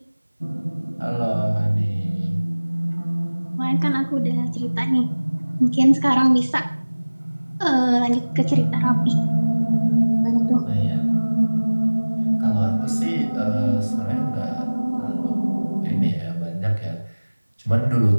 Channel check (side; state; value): both; inverted; correlation -1.00